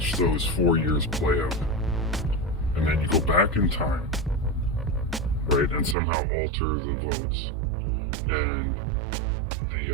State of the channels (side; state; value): left; drops out; at 6.0 s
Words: those 4 years play out. And then you go back in time, right? And somehow alter the votes. And